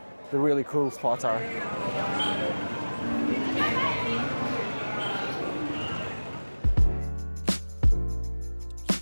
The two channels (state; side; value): inverted; both; correlation -1.00